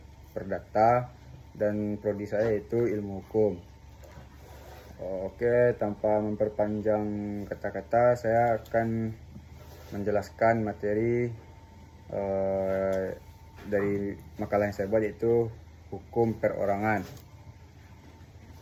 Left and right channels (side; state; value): both; identical; correlation 1.00